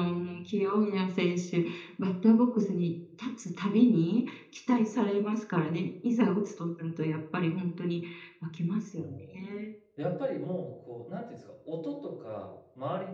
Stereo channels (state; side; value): identical; both; correlation 1.00